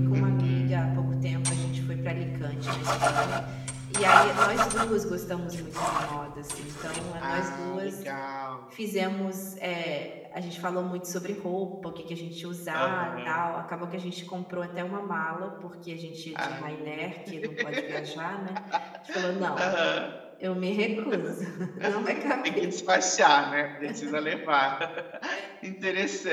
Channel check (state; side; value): identical; both; correlation 1.00